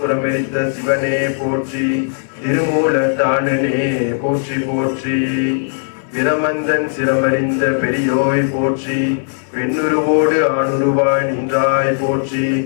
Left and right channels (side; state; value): right; silent; digital silence